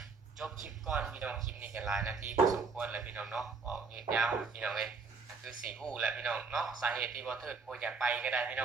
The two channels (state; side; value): quieter; left; 4.6 dB